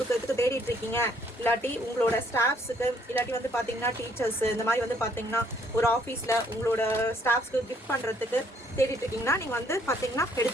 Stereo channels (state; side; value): normal; both; correlation 0.66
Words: தேடிட்டு இருக்கீங்க, இல்லாட்டி உங்களோட ஸ்டாஃப்ஸுக்கு, இல்லாட்டி வந்து பார்த்தீங்கன்னா டீச்சர்ஸ், இந்த மாதிரி வந்து பார்த்தீங்கன்னா ஒரு ஆஃபீஸில் உங்களோட ஸ்டாஃப்ஸ்க்கு கிஃப்ட் பண்ணுறதுக்கு தேடிட்டு இருக்கீங்கன்னா நீங்கள் வந்து பார்த்தீங்கன்னா